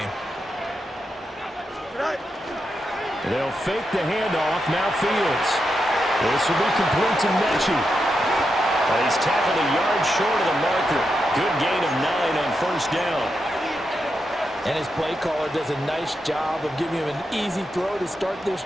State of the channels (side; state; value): both; normal; correlation 0.86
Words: They'll fake the handoff. Now Fields. This will be complete to Mechie. And he's tackled a yard short of the marker. Good gain of 9 on first down. And his play caller does a nice job of giving him an easy throw to start this